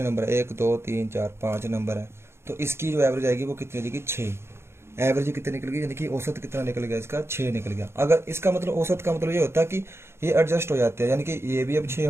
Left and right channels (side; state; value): left; late; 0.12 ms